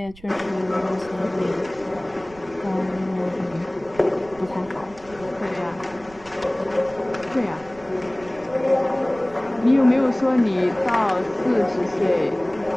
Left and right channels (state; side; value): noise; right; rumble, 23 dB below the sound